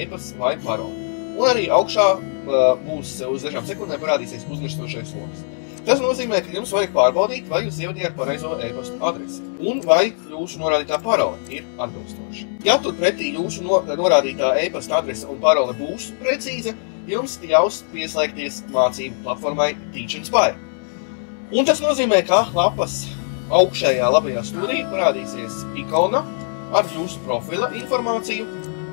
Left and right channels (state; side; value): silent; right; 65 dB below the other